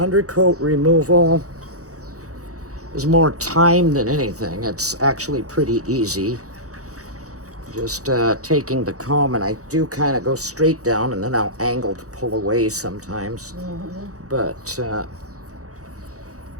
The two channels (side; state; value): left; late; 0.66 ms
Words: removal is more time than anything. It's actually pretty easy. Just taking the comb, and I do kind of go straight down and then I'll angle to pull away sometimes. But see,